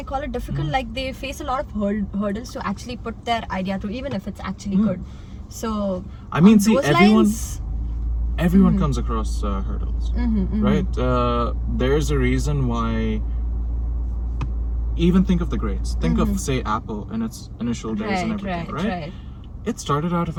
call it difficult? Like they face a lot of hurdles to actually put their idea through, even if it's actually good. So I mean, on see, those everyone comes across hurdles, right? There's a reason why. Even think of the greats. Think of, say, Apple in its initial days and everything, right? It started out of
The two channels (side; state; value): both; identical; correlation 1.00